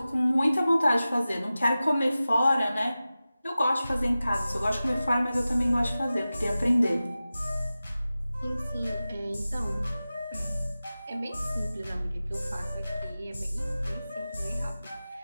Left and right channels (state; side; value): inverted; both; correlation -0.96